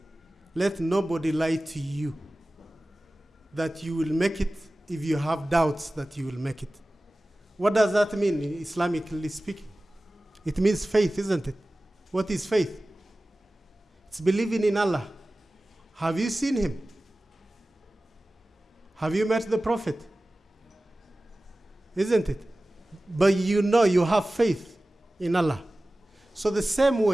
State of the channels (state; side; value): normal; both; correlation 0.97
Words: Let nobody lie to you that you will make it if you have doubts that you will make it. What does that mean, Islamically speaking? It means faith, isn't it? What is faith? It's believing in Allah. Have you seen him? Have you met the Prophet? Isn't it? But you know you have faith in Allah. So the same